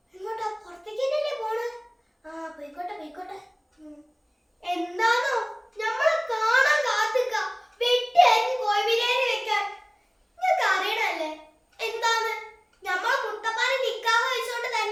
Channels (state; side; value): identical; both; correlation 1.00